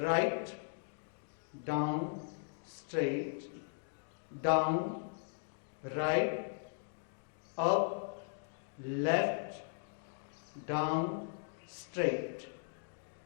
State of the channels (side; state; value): right; silent; digital silence